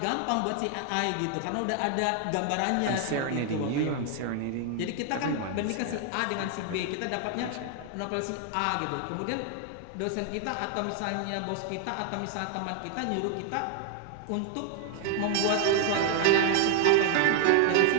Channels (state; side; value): different; both; correlation 0.00